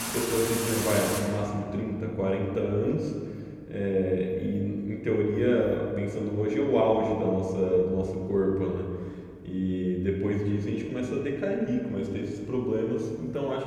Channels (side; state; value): both; identical; correlation 1.00